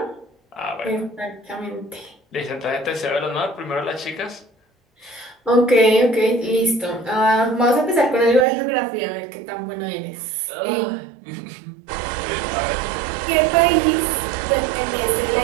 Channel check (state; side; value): drops out; left; at 8.5 s